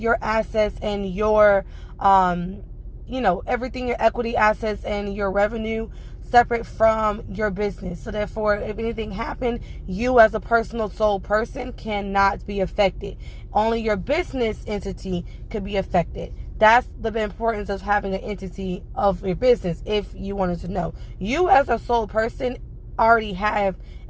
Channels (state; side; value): identical; both; correlation 1.00